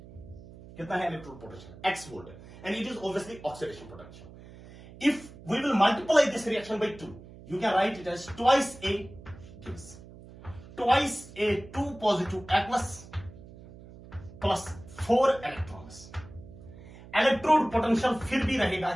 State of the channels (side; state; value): right; noise; hum, 18 dB below the sound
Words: कितना है electrode potential, x volt, and it is obviously oxidation potential. If we will multiply this reaction by 2, you can write it as twice A gives twice A2 positive aqueous plus 4 electrons। Electrode potential फिर भी रहेगा